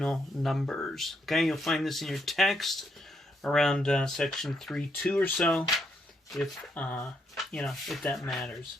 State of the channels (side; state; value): both; normal; correlation 0.77